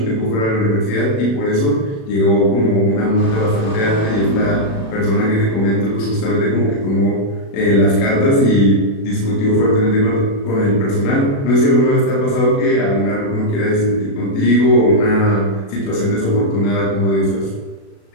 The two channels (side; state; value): right; late; 36 ms